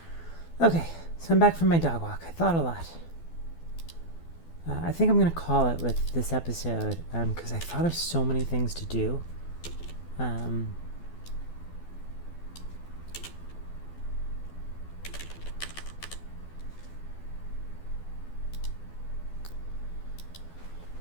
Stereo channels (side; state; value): right; late; 12 ms